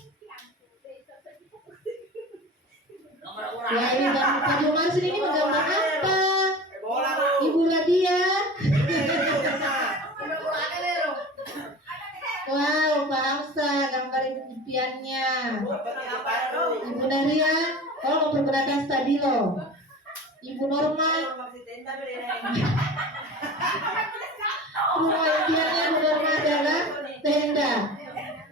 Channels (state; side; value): normal; both; correlation 0.36